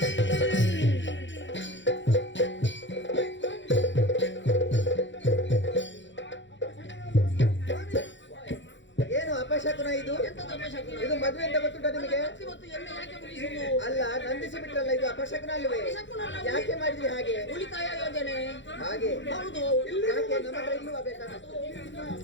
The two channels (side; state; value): right; late; 0.54 ms